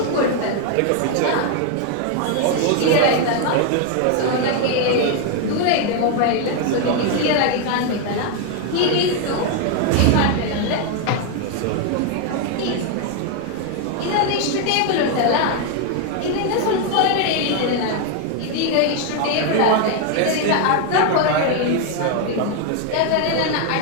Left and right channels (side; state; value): both; different; correlation 0.01